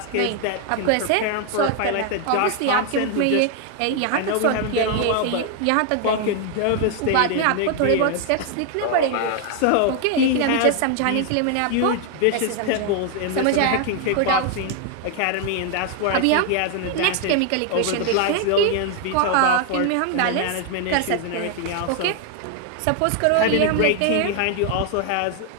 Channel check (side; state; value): both; different; correlation 0.00